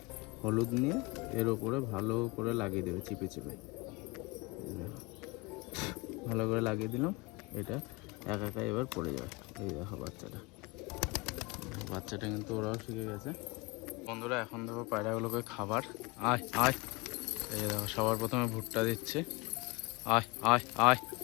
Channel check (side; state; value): right; quieter; 25.7 dB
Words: হলুদ নিয়ে এর ওপরে ভালো করে লাগিয়ে দেবে চিপে চিপে। ভালো করে লাগিয়ে দিলাম, এটা একা একা এবার পড়ে যাবে। এই দেখো বাচ্চাটা কিন্তু ওরাও শিখে গেছে। বন্ধুরা এখন দেখো পায়রাগুলোকে খাবার, আয় আয়। এই দেখো সবার প্রথমে ভুট্টা দিচ্ছে, আয় আয় আয়